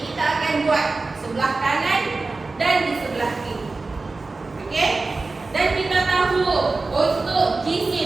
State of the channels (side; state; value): left; quieter; 3.6 dB